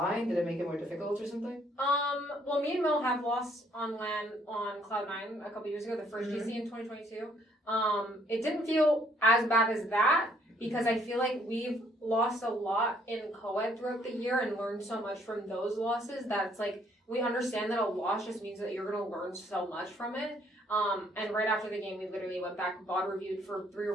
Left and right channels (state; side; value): normal; both; correlation 0.65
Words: Did it make it more difficult or something? Well, me and Mel have lost on LAN on Cloud9 a couple years ago, the first GC in 2022. It didn't feel as bad as that because I feel like we've lost a lot in co-ed throughout the year and learned so much from those losses that it's like we understand that a loss just means that you're going to learn so much from it. And right after the game, we literally went back, VOD reviewed for 3